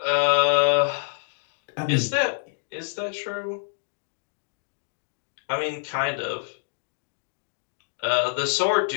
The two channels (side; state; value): right; silent; 60 dB below the other